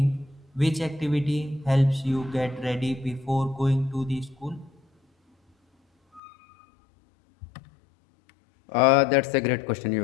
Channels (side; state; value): right; drops out; at 6.2 s